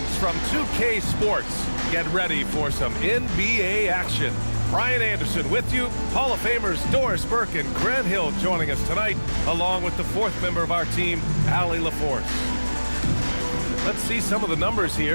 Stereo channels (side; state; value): both; inverted; correlation -1.00